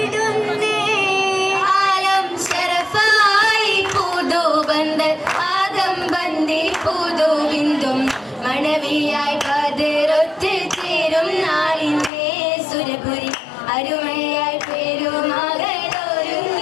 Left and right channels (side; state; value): right; drops out; at 12.1 s